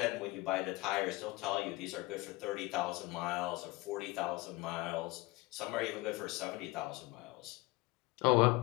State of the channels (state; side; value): quieter; right; 21.9 dB